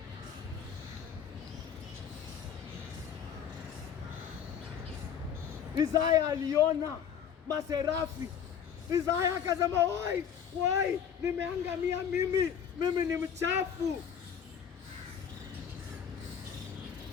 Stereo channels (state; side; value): quieter; right; 8.1 dB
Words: Isaya aliona maserafi. Isaya akasema, wai, nimeangamia mimi ni mchafu.